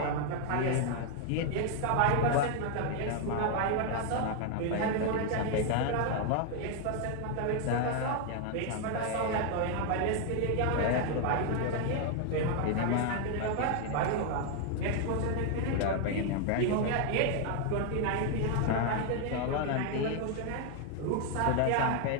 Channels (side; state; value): both; different; correlation 0.00